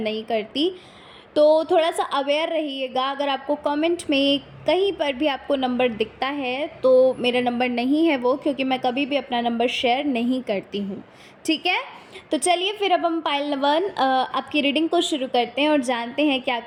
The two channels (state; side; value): identical; both; correlation 1.00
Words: करती। तो थोड़ा सा अवेयर रहिएगा। अगर आपको कमेंट में कहीं पर भी आपको नंबर दिखता है तो मेरा नंबर नहीं है वो, क्योंकि मैं कभी भी अपना नंबर शेयर नहीं करती हूँ। ठीक है, तो चलिए फिर अब हम पाइल 1 आपकी रीडिंग को शुरू करते हैं और जानते हैं कि